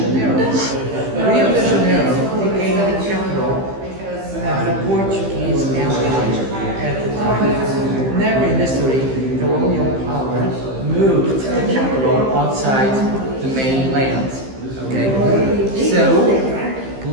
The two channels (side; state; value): left; late; 15 ms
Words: Rio de Janeiro became the capital of the Portuguese Empire at the time. Never in history, colonial power moved the capital outside the mainland. Okay? So,